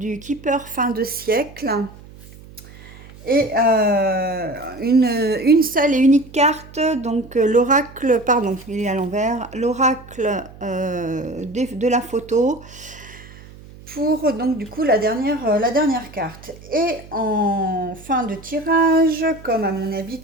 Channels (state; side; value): noise; right; hum, 20 dB below the sound